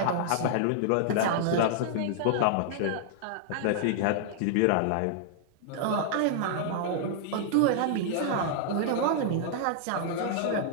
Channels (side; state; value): both; different; correlation -0.01